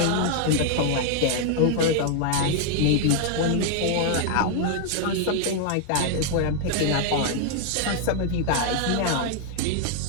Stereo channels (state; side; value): different; both; correlation 0.00